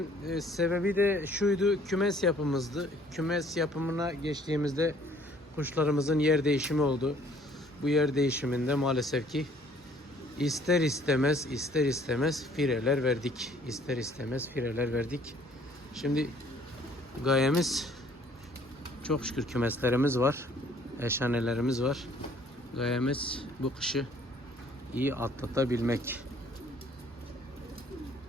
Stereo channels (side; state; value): both; normal; correlation 0.58